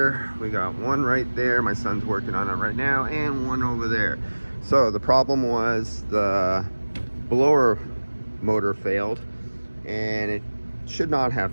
we got one right there, my son's working on it right now, and one over there. So the problem was the blower motor failed, and it should not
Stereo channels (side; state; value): both; inverted; correlation -1.00